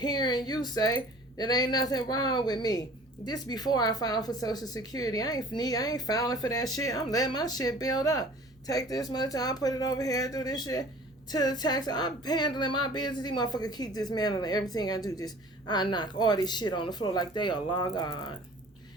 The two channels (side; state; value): both; normal; correlation 0.47